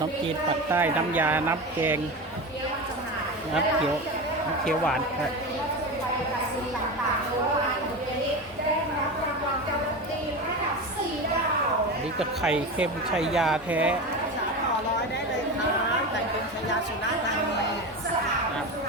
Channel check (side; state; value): both; normal; correlation 0.24